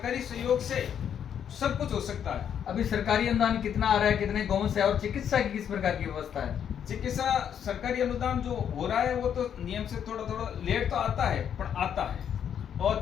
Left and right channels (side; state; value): right; quieter; 8.7 dB